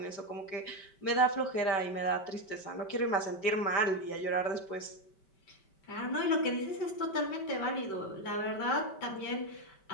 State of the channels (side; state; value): right; late; 5.2 ms